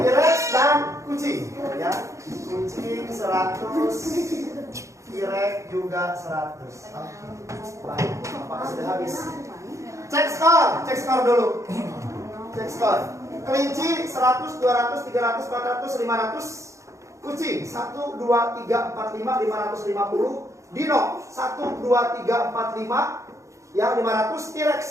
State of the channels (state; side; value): late; left; 0.15 ms